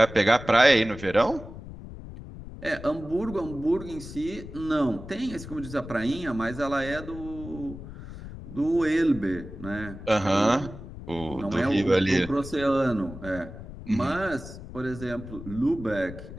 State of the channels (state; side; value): noise; left; rumble, 13 dB below the sound